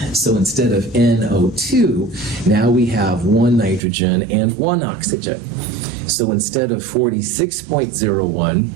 So instead of NO2, now we have 1 nitrogen and 1 oxygen. So instead of 46.01,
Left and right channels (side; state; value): left; drops out; at 3.8 s